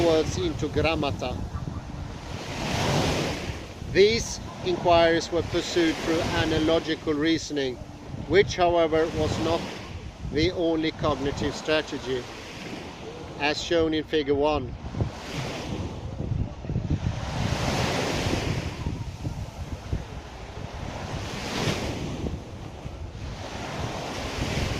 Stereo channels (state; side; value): identical; both; correlation 1.00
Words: words, into grammata. These inquiries were pursued through analogical reasoning, which, however, was not the only cognitive strategy, as shown in Figure 1.